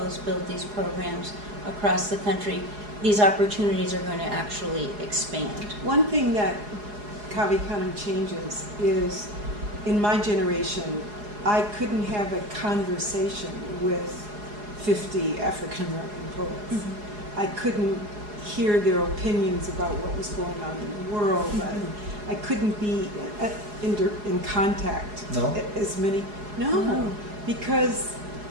build these programs across the country, these opportunities are going to actually expand. One thing that Canem changes is, in my generation, I couldn't have a conversation with 50 African American poets. Mm-hmm. I couldn't hear their opinions about what was going on in the world. Mm-hmm. I couldn't be in contact as many. No, because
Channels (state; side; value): late; left; 4.8 ms